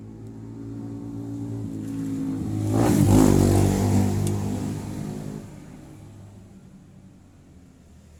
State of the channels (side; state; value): both; identical; correlation 1.00